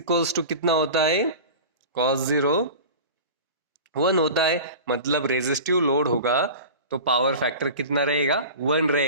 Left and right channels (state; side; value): inverted; both; correlation -0.35